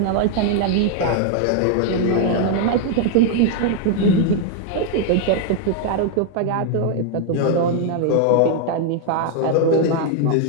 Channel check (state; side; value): different; both; correlation 0.00